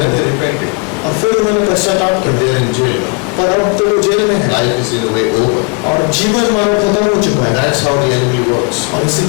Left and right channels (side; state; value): right; quieter; 32.3 dB